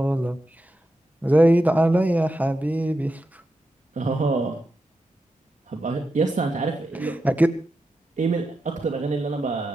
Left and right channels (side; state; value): both; normal; correlation 0.88